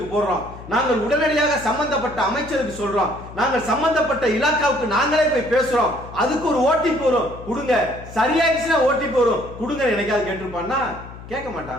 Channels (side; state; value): left; noise; hum, 15 dB below the sound